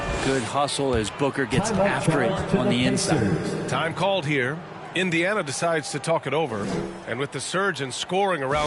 Good hustle as Booker gets after it on the inside. Time called here. Indiana decides to talk it over. And with the surge in scoring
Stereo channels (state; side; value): identical; both; correlation 1.00